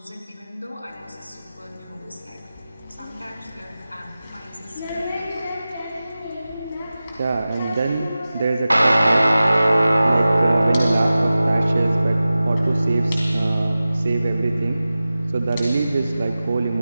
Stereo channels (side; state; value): both; inverted; correlation -0.96